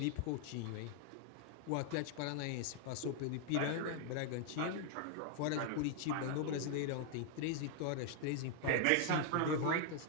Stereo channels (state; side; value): different; both; correlation 0.00